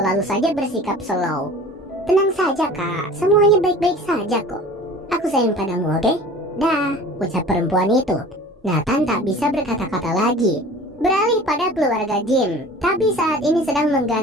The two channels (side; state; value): both; normal; correlation 0.42